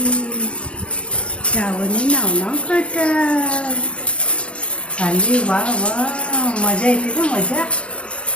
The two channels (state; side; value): late; right; 0.059 ms